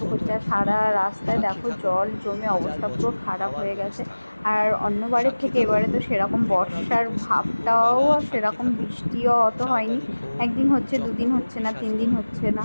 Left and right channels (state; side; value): inverted; both; correlation -1.00